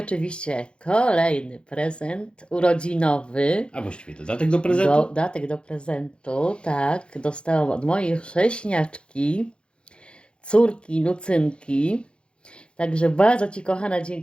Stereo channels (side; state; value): right; late; 0.055 ms